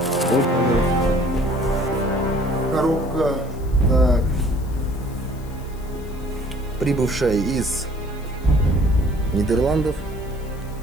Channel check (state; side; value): noise; left; hiss, 24 dB below the sound